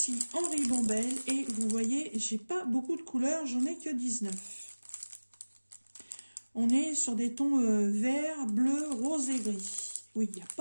en ribambelle et vous voyez, j'ai pas beaucoup de couleurs, j'en ai que 19. On est sur des tons vert, bleu, rose et gris. Oui, il n'y a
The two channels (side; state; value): both; inverted; correlation -1.00